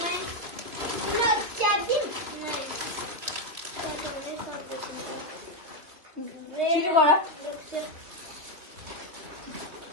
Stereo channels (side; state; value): left; late; 3.2 ms